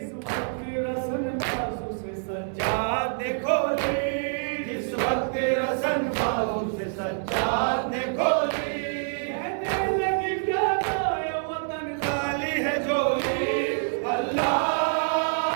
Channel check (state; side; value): silent; left; 61 dB below the other